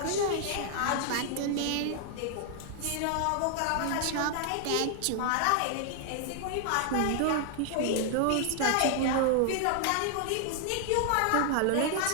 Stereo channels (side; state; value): both; different; correlation 0.00